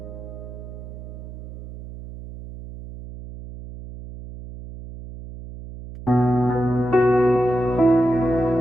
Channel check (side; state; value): right; noise; hum, 13 dB below the sound